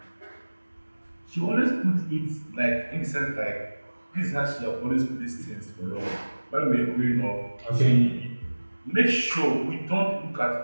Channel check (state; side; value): inverted; both; correlation -1.00